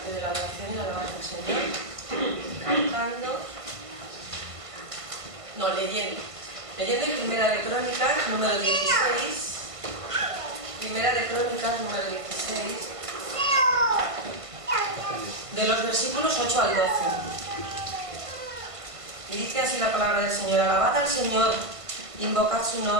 de la adoración y la alabanza al Señor. Cantando, no, leyendo en Primera de Crónicas, número 16. Primera de Crónicas, número 16. De los versículos 8 al 12. Y dice así la palabra del Señor: alabad al Señor, invocad su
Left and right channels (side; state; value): left; late; 1.5 ms